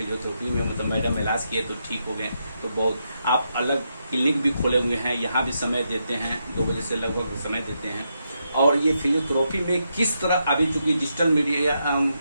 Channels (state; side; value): inverted; both; correlation -0.82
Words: में मतलब मैडम इलाज किए तो ठीक हो गए। तो बहुत आप अलग क्लिनिक भी खोले हुए हैं, यहाँ भी समय देते हैं, 2 बजे से लगभग समय देते हैं। और ये फिजियोथेरेपी में किस तरह अभी चूंकि डिजिटल मीडिया